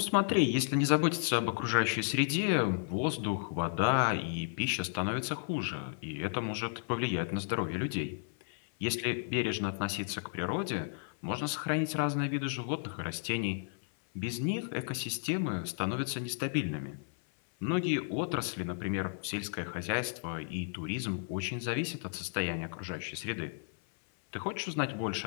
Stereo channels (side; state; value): right; silent; 55 dB below the other